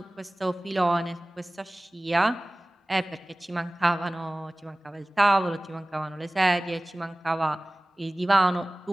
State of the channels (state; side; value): normal; both; correlation 0.98